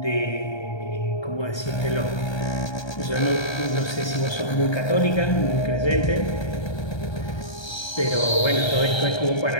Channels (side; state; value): right; late; 1.3 ms